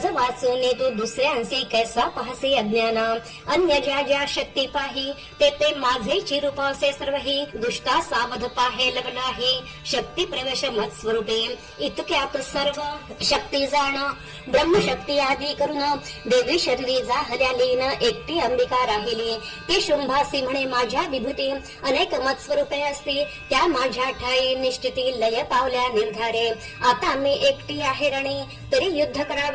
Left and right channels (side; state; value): both; identical; correlation 1.00